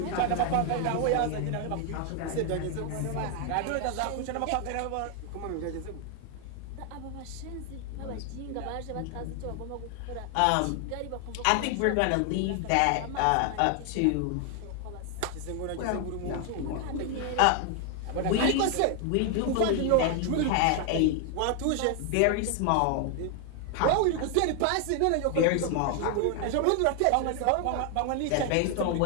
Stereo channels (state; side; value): different; both; correlation 0.00